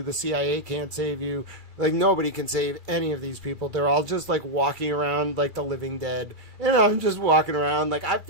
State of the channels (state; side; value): late; left; 2.3 ms